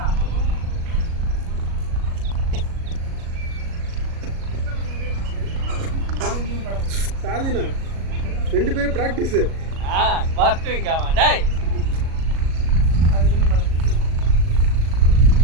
சாதினா 2 பேரும் பிராக்டிஸ் வாஸ்துவிங்காமா டேய்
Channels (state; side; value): late; left; 37 ms